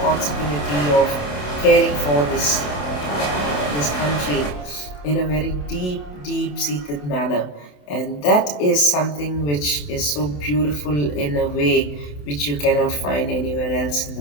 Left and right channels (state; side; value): late; right; 27 ms